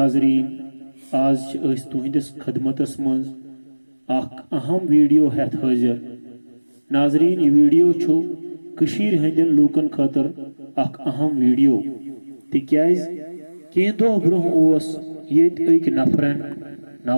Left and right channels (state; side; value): inverted; both; correlation -1.00